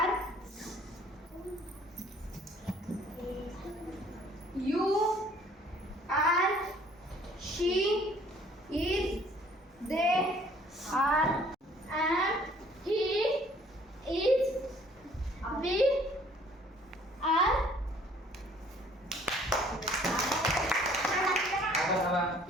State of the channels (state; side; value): normal; both; correlation 0.57